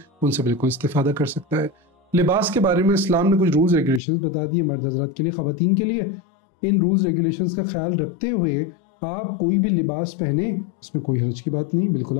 ان سے بالکل استفادہ کر سکتا ہے. لباس کے بارے میں اسلام نے کچھ رولز ریگولیشنز بتا دیے مرد حضرات کے لیے، خواتین کے لیے. ان رولز ریگولیشنز کا خیال رکھتے ہوئے آپ کوئی بھی لباس پہنے، اس میں کوئی حرج کی بات نہیں، بالکل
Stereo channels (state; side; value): drops out; right; at 4.0 s